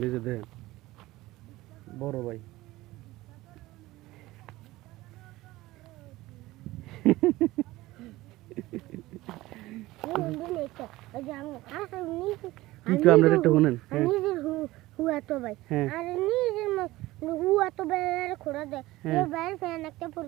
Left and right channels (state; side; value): quieter; left; 18.2 dB